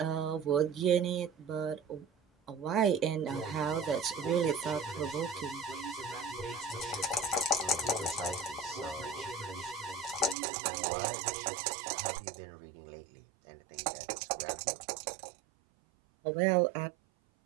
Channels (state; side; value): drops out; left; at 10.4 s